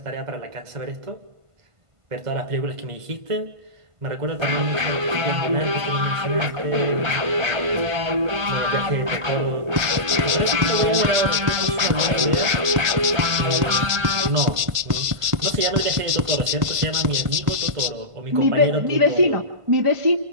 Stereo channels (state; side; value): late; left; 1.5 ms